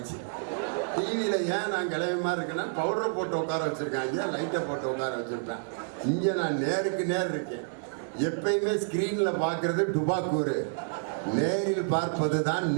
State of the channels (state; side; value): silent; left; digital silence